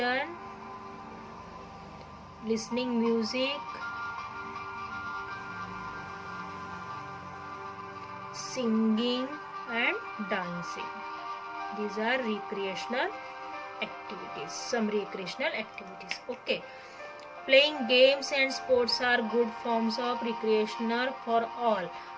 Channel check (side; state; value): both; identical; correlation 1.00